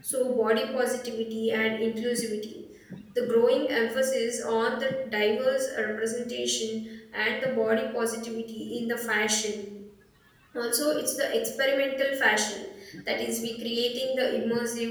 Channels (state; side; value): identical; both; correlation 1.00